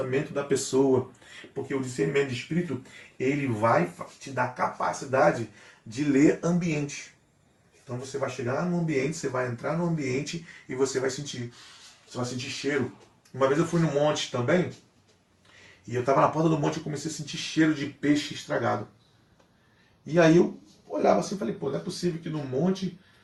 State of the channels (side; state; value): both; identical; correlation 1.00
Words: da pessoa. Porque o discernimento de espírito, ele vai te dar capacidade de ler ambiente. Então você vai chegar no ambiente, você vai entrar no ambiente e você vai sentir. Você vai sentir cheiro. Uma vez eu fui no monte também, e eu estava na porta do monte e comecei a sentir cheiro de peixe estragado. E aí eu olhava assim e falei, pô, não é possível que no monte